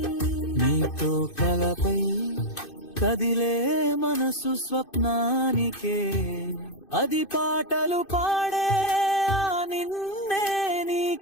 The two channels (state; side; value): late; right; 2.6 ms